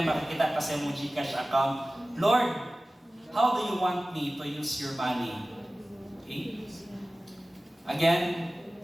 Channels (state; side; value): normal; both; correlation 0.97